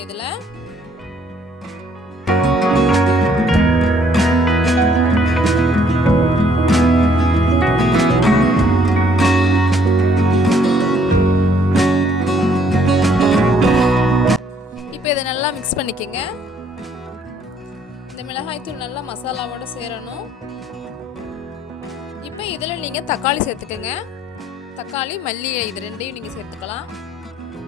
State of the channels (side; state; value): both; normal; correlation 0.65